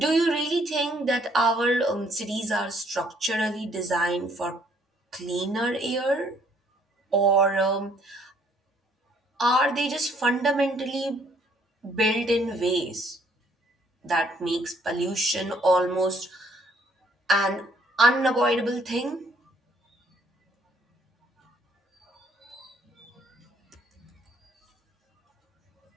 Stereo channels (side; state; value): both; normal; correlation 0.64